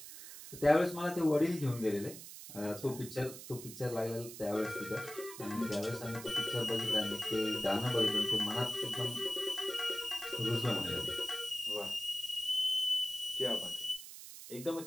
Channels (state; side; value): noise; right; hiss, 13 dB below the sound